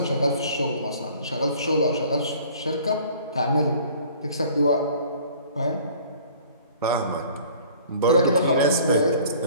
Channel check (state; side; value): inverted; both; correlation -0.51